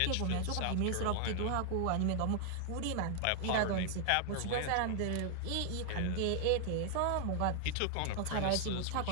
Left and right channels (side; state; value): both; different; correlation 0.00